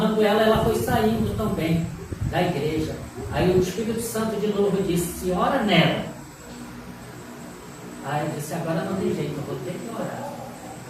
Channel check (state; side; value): identical; both; correlation 1.00